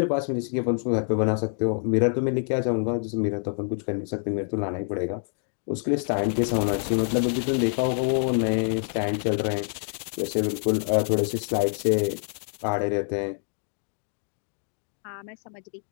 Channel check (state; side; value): silent; right; 61 dB below the other